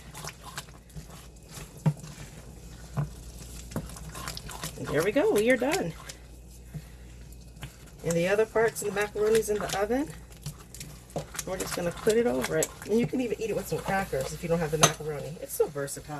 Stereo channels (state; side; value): identical; both; correlation 1.00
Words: And there we go, we are done. And the other parts of the macaroni's in the oven. We're just gonna put it over it. And you can even eat it with some crackers if you don't have the macaroni. It's so